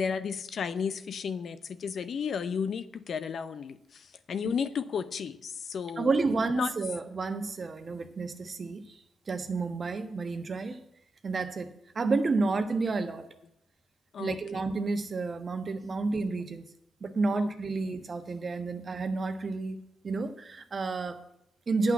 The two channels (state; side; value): normal; both; correlation 0.86